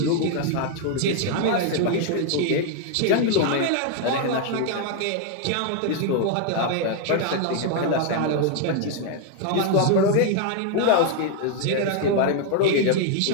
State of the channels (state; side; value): different; both; correlation 0.00